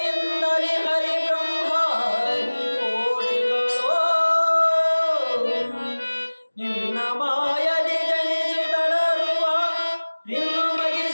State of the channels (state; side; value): inverted; both; correlation -1.00